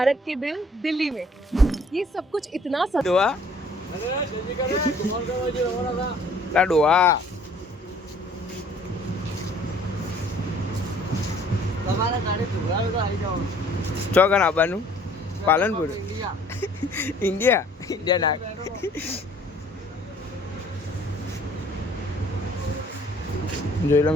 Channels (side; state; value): both; normal; correlation 0.56